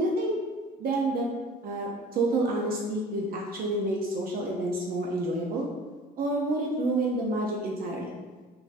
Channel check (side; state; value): both; normal; correlation 0.45